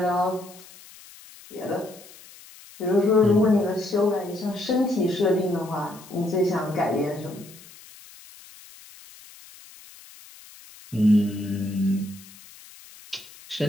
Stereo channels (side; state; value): left; noise; hiss, 21 dB below the sound